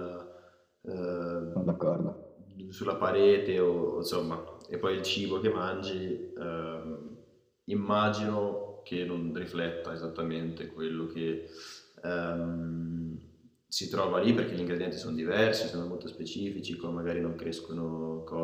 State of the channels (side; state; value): both; identical; correlation 1.00